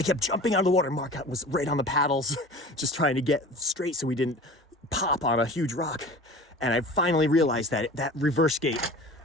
kept jumping out of the water. Mark was right on the paddles just trying to get straight so we didn't pop on a huge rock. And I finally realized that reverse gate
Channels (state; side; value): normal; both; correlation 0.39